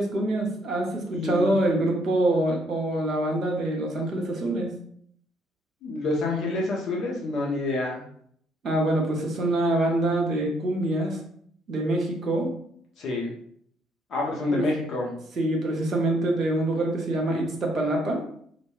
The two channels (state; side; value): normal; both; correlation 0.68